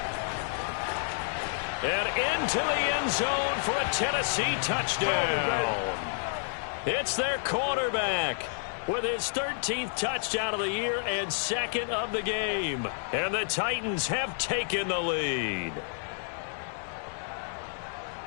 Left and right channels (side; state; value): right; silent; 58 dB below the other